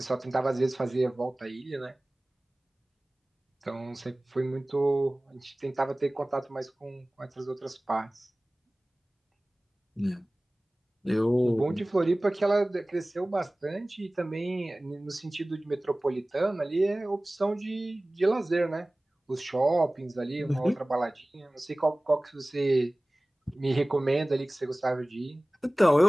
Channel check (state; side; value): normal; both; correlation 0.98